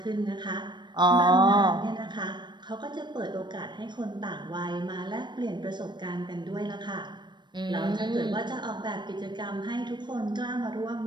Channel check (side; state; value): left; late; 0.22 ms